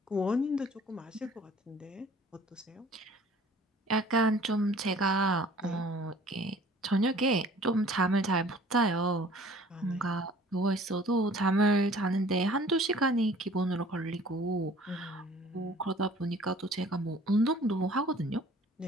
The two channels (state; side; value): normal; both; correlation 0.51